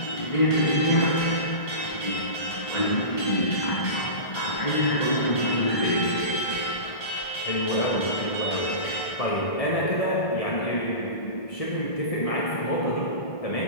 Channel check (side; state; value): right; late; 1.6 ms